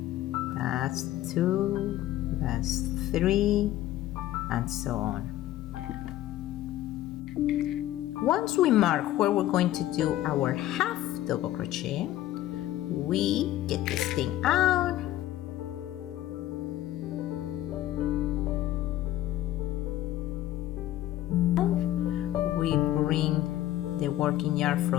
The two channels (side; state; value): right; quieter; 14.0 dB